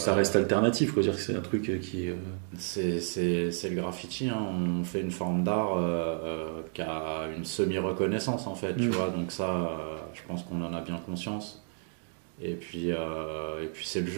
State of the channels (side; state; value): left; silent; 57 dB below the other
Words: ça reste alternatif, quoi, dire que c'est un truc qui. C'est le graffiti, hein. On fait une forme d'art qui a une semi-reconnaissance en fait, tu vois, donc ça, je pense qu'on en a bien conscience. Et puis c'est le